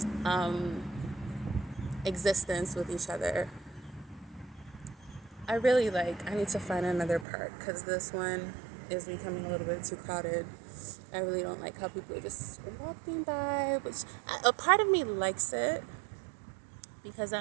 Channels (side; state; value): left; drops out; at 7.2 s